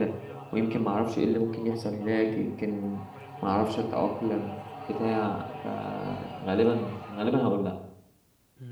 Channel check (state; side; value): identical; both; correlation 1.00